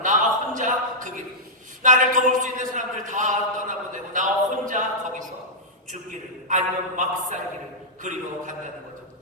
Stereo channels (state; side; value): normal; both; correlation -0.09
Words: 혼자 그 길, 나를 도울 수 있는 사람들 다 떠나보내고 나 혼자 거기서 죽기를, 아니면 막살기를 그리고 간다는 거죠.